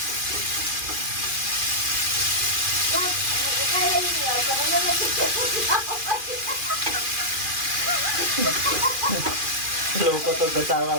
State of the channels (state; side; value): late; left; 2.4 ms